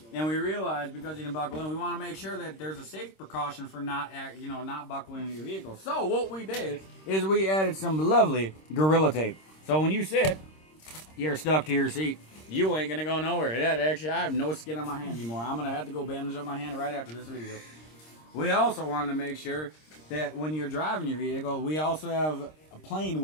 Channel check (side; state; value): right; late; 26 ms